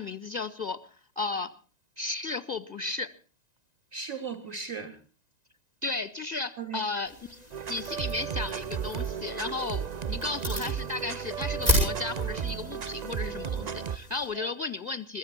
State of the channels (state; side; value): late; left; 1.9 ms